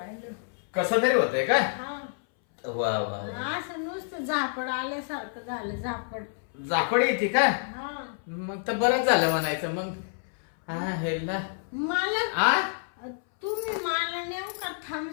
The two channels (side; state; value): right; silent; 59 dB below the other